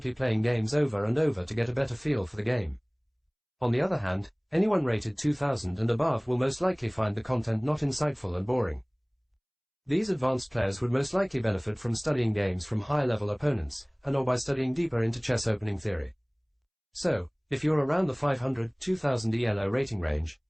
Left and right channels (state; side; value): identical; both; correlation 1.00